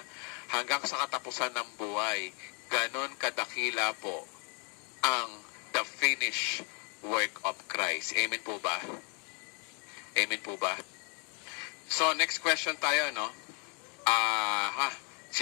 hanggang sa katapusan ng buhay. Ganon kadakila po ang the finished work of Christ. Amen po ba? Amen po ba? So, next question tayo, no?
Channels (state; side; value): quieter; right; 35.6 dB